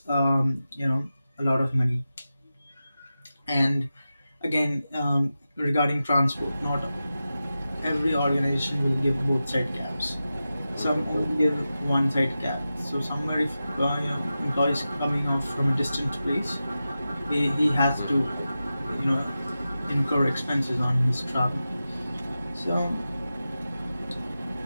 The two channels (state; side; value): inverted; both; correlation -0.93